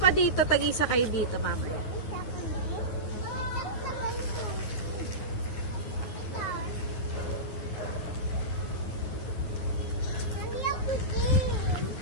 dito, tag-isa kayo dito, mamaya.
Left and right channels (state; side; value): late; right; 9.8 ms